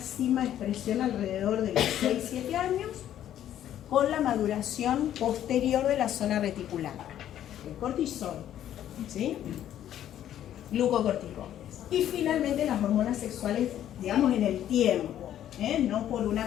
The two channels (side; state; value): right; quieter; 11.3 dB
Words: expresión alrededor de los 6-7 años con la maduración posterior de la zona reticular. El cortisol, ¿sí? Glucocorticoides. Y finalmente las hormonas sexuales, digamos, en el tiempo, no por una